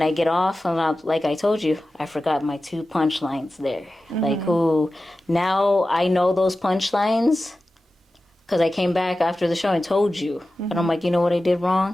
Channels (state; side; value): normal; both; correlation 0.94